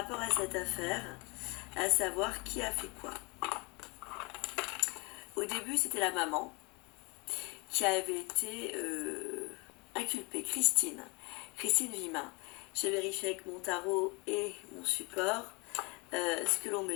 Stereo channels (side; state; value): right; quieter; 28.9 dB